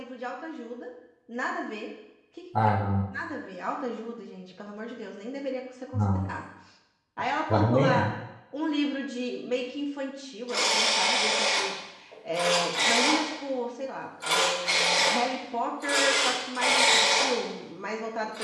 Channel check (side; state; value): both; identical; correlation 1.00